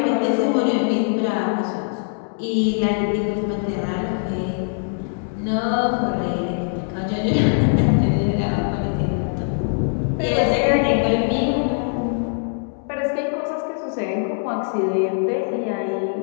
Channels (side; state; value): right; silent; 64 dB below the other